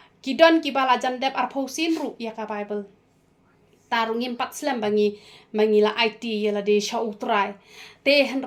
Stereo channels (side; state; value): both; identical; correlation 1.00